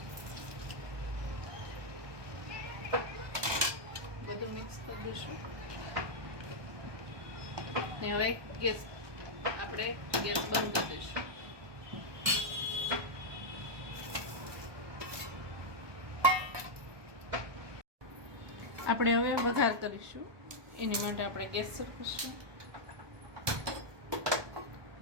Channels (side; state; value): left; late; 1.2 ms